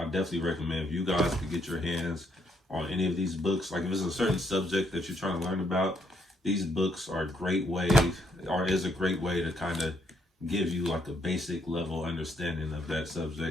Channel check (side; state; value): both; normal; correlation 0.73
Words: definitely recommend if you guys could get your hands on any of these books. Like if it's a certain subject that you're trying to learn about, these books are a great way, or is a great way to kind of give you like a basic level understanding of that